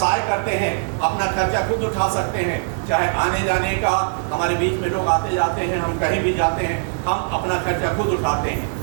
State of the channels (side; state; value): left; silent; 59 dB below the other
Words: करते हैं, अपना खर्चा खुद उठा सकते हैं, चाहे आने जाने का, हमारे बीच में लोग आते जाते हैं, हम कहीं भी जाते हैं, हम अपना खर्चा खुद उठाते हैं,